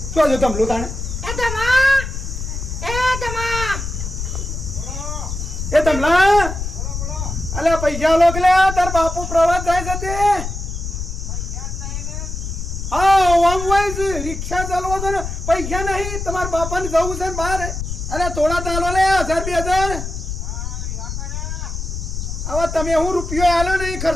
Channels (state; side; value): noise; left; rumble, 5 dB below the sound